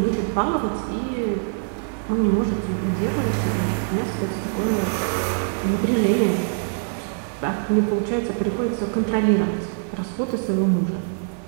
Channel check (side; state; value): left; silent; digital silence